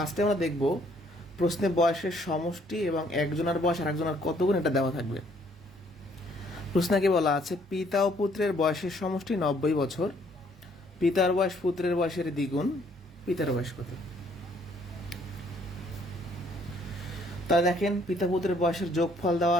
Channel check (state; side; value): normal; both; correlation 0.65